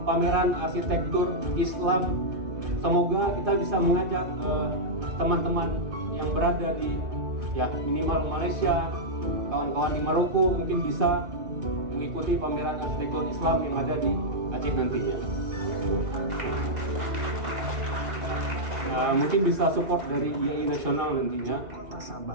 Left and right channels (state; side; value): late; left; 2.5 ms